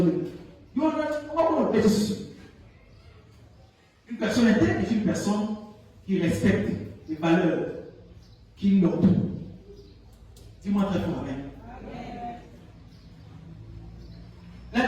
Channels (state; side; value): identical; both; correlation 1.00